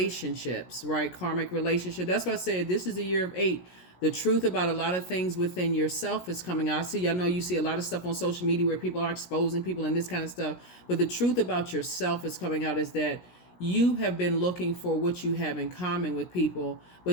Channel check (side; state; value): right; late; 17 ms